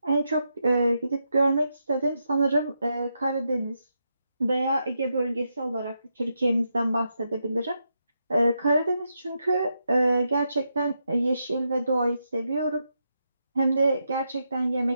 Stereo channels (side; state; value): both; inverted; correlation -0.83